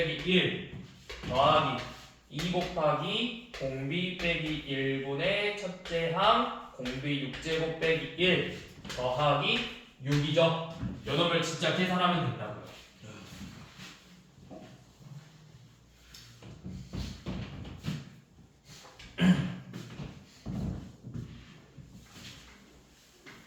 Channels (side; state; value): both; identical; correlation 1.00